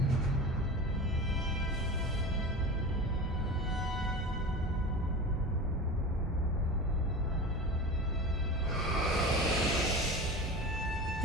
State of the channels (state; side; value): normal; both; correlation 0.32